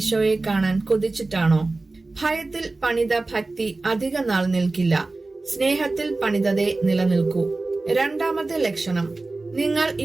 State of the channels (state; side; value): quieter; left; 3.3 dB